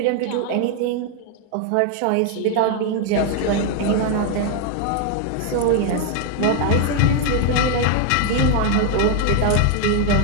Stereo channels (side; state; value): both; different; correlation 0.00